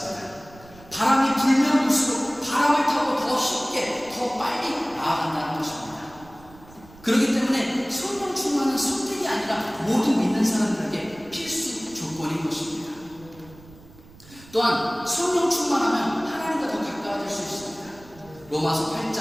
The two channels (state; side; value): noise; right; rumble, 22 dB below the sound